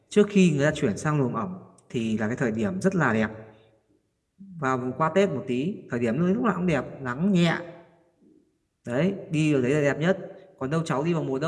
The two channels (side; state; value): both; identical; correlation 1.00